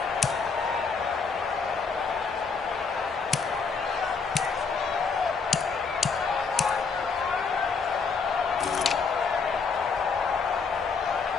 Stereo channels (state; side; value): quieter; right; 5.1 dB